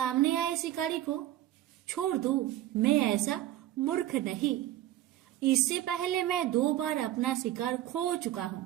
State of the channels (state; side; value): quieter; left; 13.7 dB